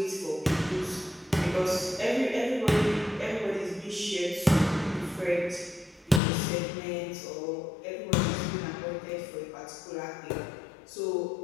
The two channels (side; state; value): right; drops out; at 6.2 s